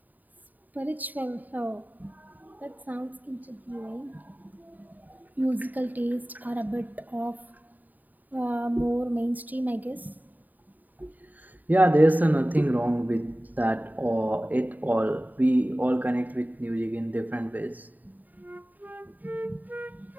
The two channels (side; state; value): left; late; 0.084 ms